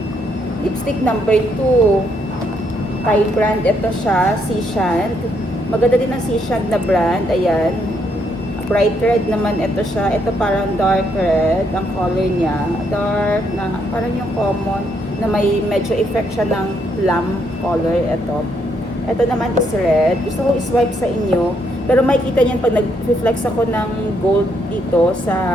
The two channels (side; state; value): both; normal; correlation 0.74